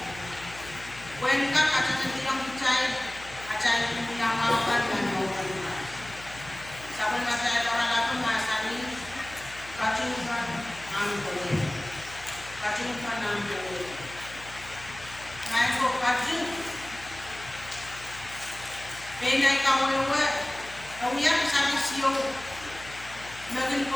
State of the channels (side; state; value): left; noise; hum, 17 dB below the sound